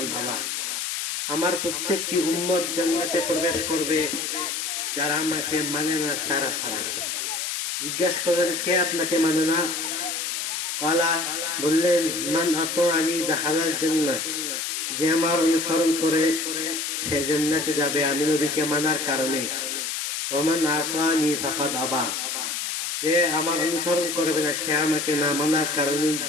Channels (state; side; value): noise; left; hiss, 3 dB below the sound